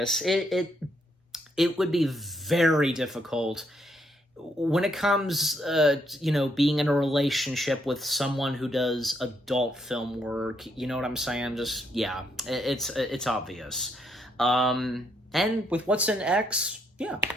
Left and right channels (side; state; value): both; normal; correlation 0.74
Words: It would be very difficult when it comes, you know, being in a relationship with someone who does adult film work. You know what I'm saying? Just, yeah, it's obvious. And with what's in X, yeah,